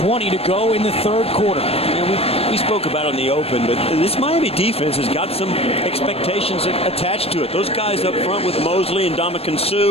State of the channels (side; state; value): right; late; 0.28 ms